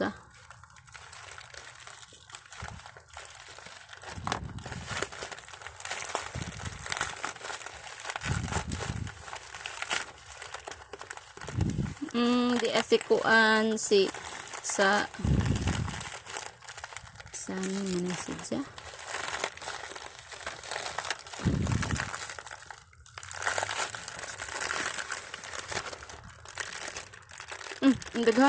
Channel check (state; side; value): identical; both; correlation 1.00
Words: Di asikuan si sa ano man si ja. Ang